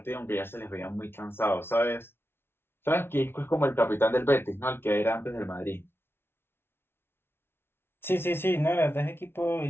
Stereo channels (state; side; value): late; right; 0.11 ms